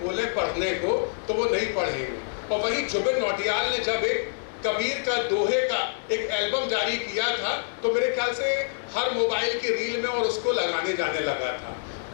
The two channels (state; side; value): silent; right; 61 dB below the other